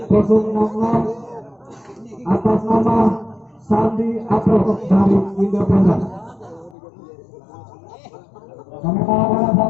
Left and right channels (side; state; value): right; drops out; at 6.8 s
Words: 060 atas nama Sandi Apro dari Independen. Kami mohon